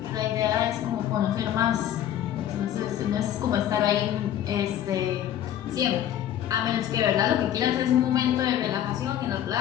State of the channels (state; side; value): quieter; right; 11.1 dB